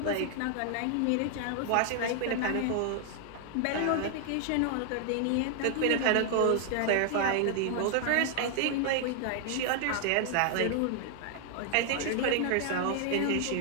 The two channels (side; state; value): both; different; correlation 0.00